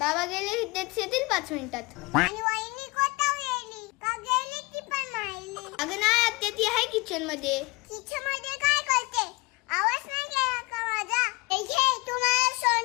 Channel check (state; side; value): quieter; right; 24.9 dB